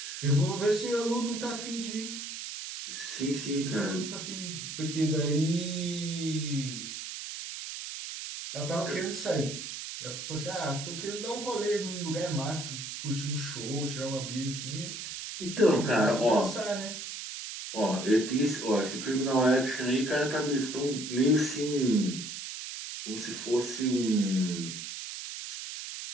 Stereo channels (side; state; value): right; noise; hiss, 7 dB below the sound